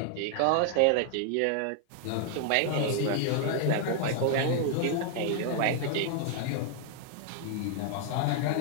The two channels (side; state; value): both; different; correlation 0.00